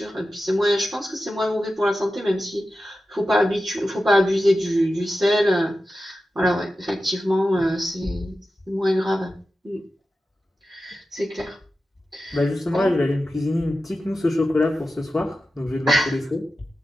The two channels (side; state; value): both; normal; correlation 0.93